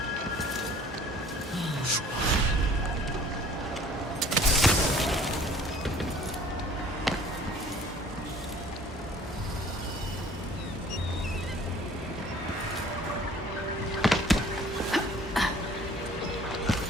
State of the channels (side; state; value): both; normal; correlation 0.52